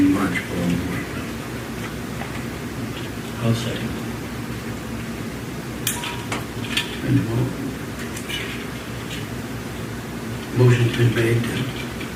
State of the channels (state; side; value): identical; both; correlation 1.00